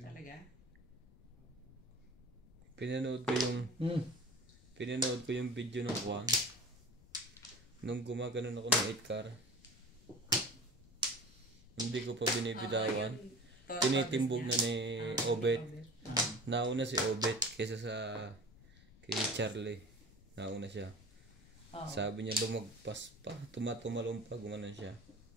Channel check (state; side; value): noise; left; rumble, 24 dB below the sound